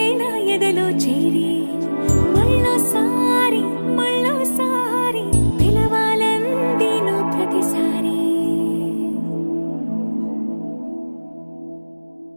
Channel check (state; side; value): inverted; both; correlation -1.00